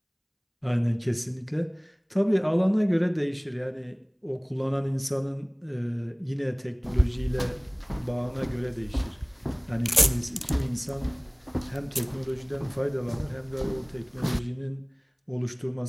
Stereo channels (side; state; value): both; identical; correlation 1.00